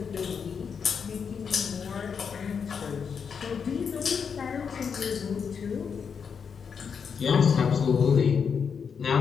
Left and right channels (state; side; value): quieter; right; 6.5 dB